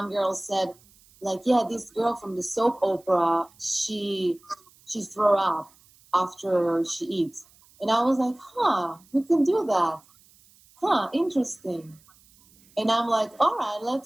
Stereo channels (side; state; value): right; noise; hiss, 29 dB below the sound